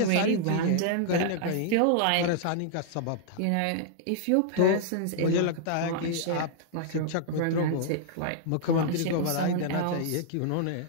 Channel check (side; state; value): both; different; correlation -0.01